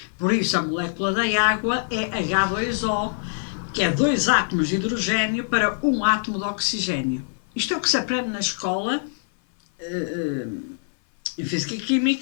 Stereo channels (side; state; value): right; silent; 57 dB below the other